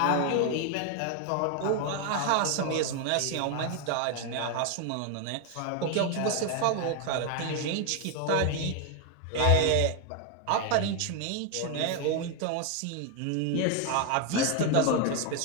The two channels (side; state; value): both; different; correlation 0.01